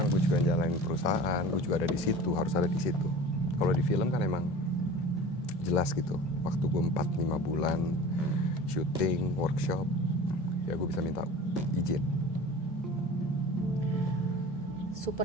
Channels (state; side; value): normal; both; correlation 0.39